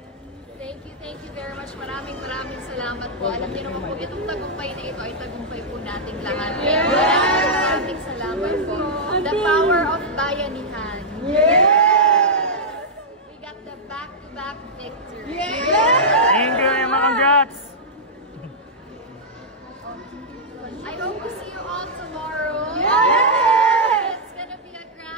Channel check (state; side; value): normal; both; correlation -0.08